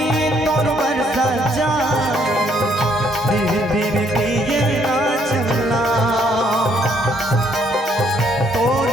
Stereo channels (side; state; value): both; normal; correlation 0.68